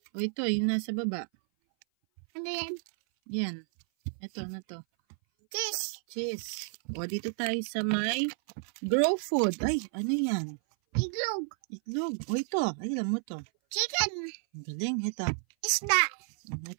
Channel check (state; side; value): silent; left; 57 dB below the other